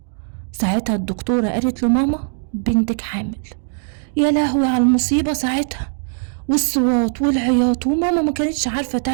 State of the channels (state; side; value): silent; left; digital silence